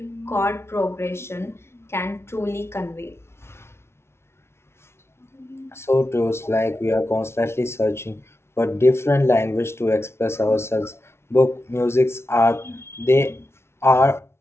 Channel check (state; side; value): late; right; 0.12 ms